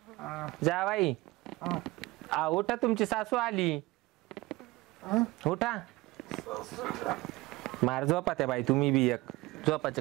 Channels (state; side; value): quieter; left; 20.8 dB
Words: जावाई उठा तुमची सासू आली उठा मार झोपा त्या बाई तुम्ही बी एक झोपाचे